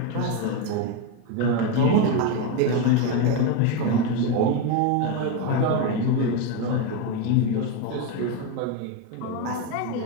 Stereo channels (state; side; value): different; both; correlation 0.03